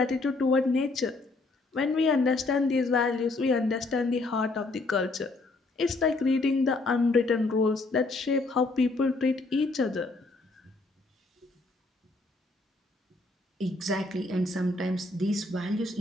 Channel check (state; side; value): quieter; right; 3.3 dB